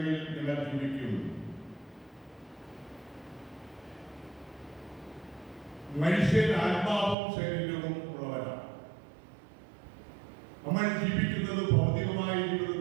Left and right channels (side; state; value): left; drops out; at 7.2 s